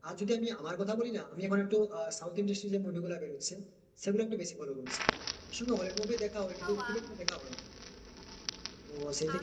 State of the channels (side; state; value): both; identical; correlation 1.00